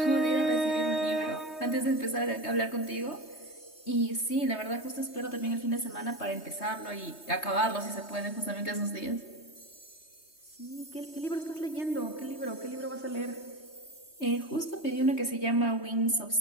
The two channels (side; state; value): right; late; 3.2 ms